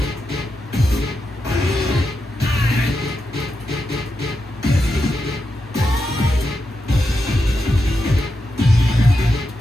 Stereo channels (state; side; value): normal; both; correlation 0.87